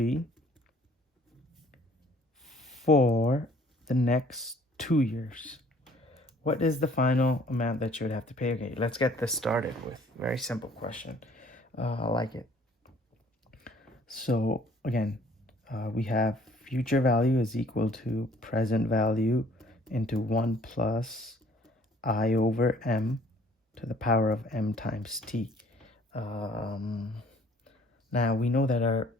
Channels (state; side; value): normal; both; correlation 0.57